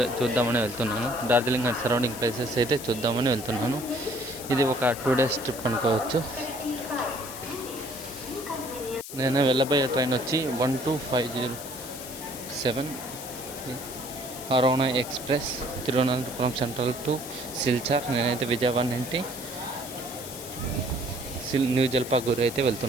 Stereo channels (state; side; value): noise; left; hiss, 11 dB below the sound